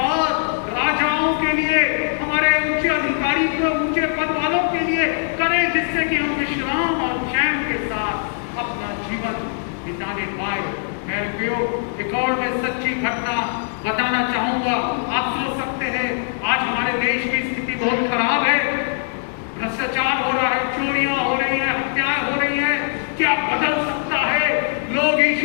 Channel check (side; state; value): right; silent; digital silence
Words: राजाओं के लिए, हमारे ऊंचे अधिकारी को, ऊंचे पद वालों के लिए करें, जिससे कि हम विश्राम और चैन के साथ अपना जीवन बिताने पाए। मेरे प्रियो, एक और मैं सच्ची घटना बताना चाहूंगा। आप सोच सकते हैं आज हमारे देश की स्थिति बहुत खराब है, भ्रष्टाचार हो रहा है, चोरियां हो रही है, हत्याएं हो रही है। क्या बदल सकता है? लोग